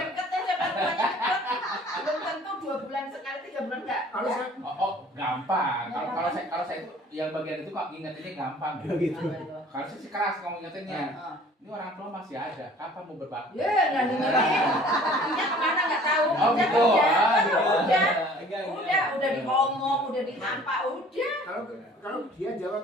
deket aja kan rumahnya deket. Belum tentu 2 bulan sekali, 3 bulan enggak. Kalau saya gampang. Kalau saya itu yang bagian itu kok ingetinnya gampang. Gitu. Kalau saya sih keras ngomong ingetinnya. Ah. Ini orang tua masih ada. Kapan mau berbakti? Ya, nggak dengerin. Artinya kemana nggak tahu. Oh, Udah, gitu. udah, Ah, gitu. udah diomong, udah dihampa, udah. kalau dia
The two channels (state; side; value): normal; both; correlation 0.51